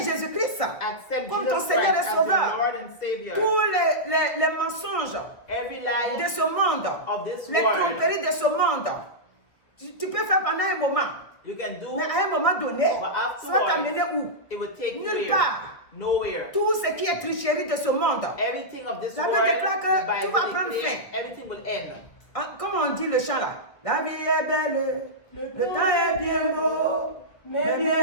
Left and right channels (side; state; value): right; late; 1.9 ms